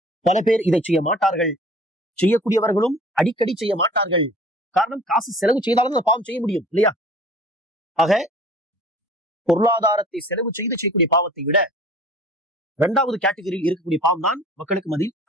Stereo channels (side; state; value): both; normal; correlation 0.47